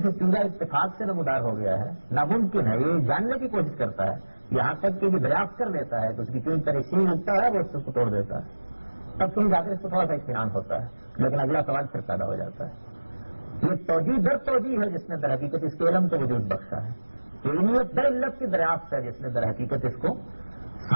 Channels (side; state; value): both; inverted; correlation -1.00